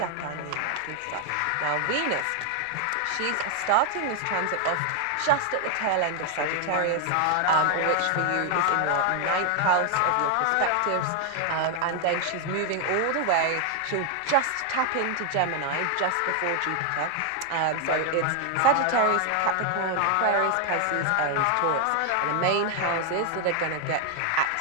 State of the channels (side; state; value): both; different; correlation 0.00